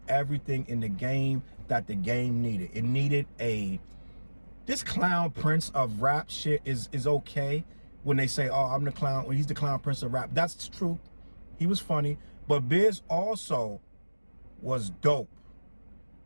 everything in the game that the game needed. It needed this clown prince of rap shit is okay when they say, oh, I'm the clown, well, he's the clown prince of rap. That's true. He was funny. But Biz also was dope.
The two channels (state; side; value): inverted; both; correlation -1.00